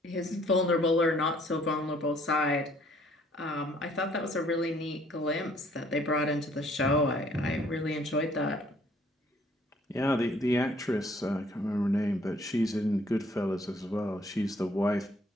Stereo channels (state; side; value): normal; both; correlation 0.62